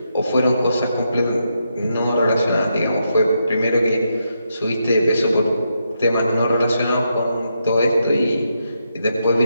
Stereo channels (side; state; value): both; inverted; correlation -0.82